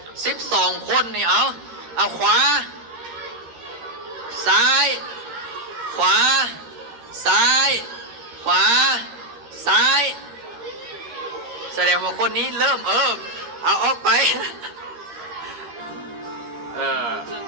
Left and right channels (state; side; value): late; left; 13 ms